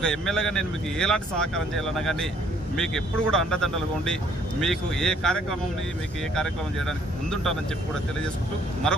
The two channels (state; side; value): normal; both; correlation 0.63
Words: ఎమ్మెల్యేగా నేను మీకు ఎలాంటి సహకారం చేయాలన్నా కానీ మీకు ఎప్పుడు కూడా అండదండలుగా ఉండి మీకు ఏ కార్యక్రమం చేయడానికి ముందుంటానని చెప్పి కూడా తెలియజేసుకుంటూ